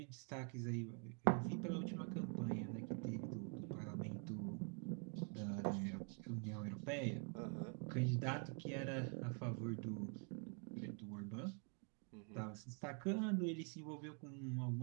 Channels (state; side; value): quieter; left; 36.3 dB